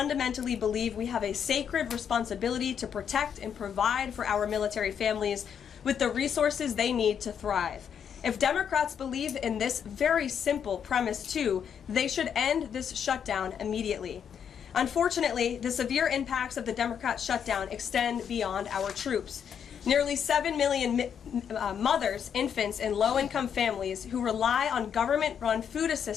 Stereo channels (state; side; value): quieter; right; 8.0 dB